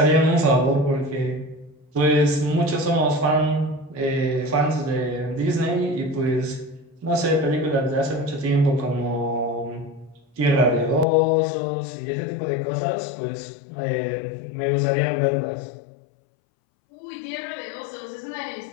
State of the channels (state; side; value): drops out; right; at 11.1 s